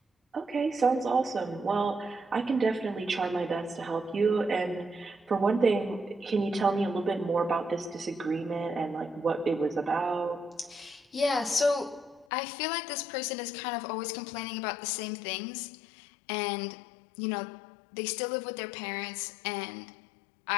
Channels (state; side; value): drops out; right; at 12.2 s